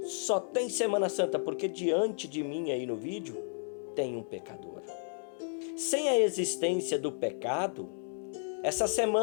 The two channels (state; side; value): silent; right; 56 dB below the other